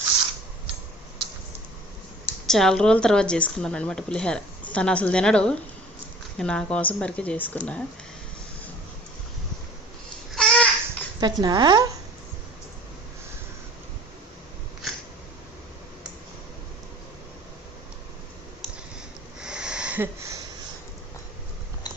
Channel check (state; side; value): normal; both; correlation 0.47